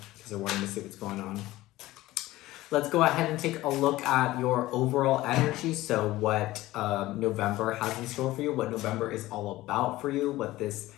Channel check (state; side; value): quieter; right; 17.1 dB